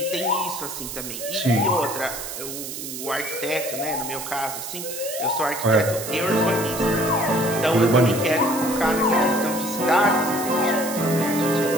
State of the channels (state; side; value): noise; right; hiss, 8 dB below the sound